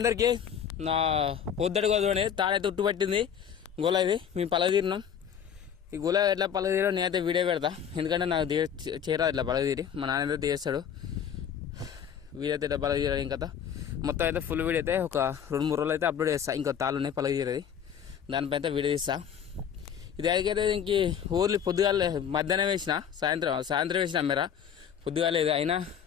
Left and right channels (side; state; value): right; quieter; 8.2 dB